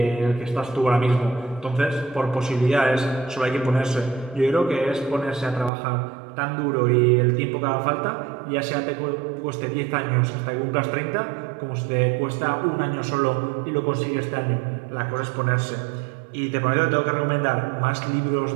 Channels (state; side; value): drops out; left; at 5.7 s